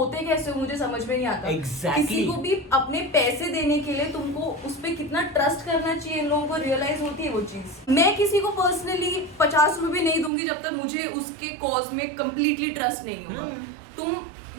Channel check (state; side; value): drops out; left; at 10.3 s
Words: कैसे हो मुझे समझ में नहीं आता। Exactly. किसी को भी अपने पैसे देने के लिए तुमको उस पे कितना ट्रस्ट करना चाहिए, इन लोगों को रियलाइज होती है वो चीज। मैं किसी को पर्सनली 50 रुपए नहीं दूंगी जब तक मुझे उसके कॉज में कंप्लीटली ट्रस्ट नहीं होगा। तुम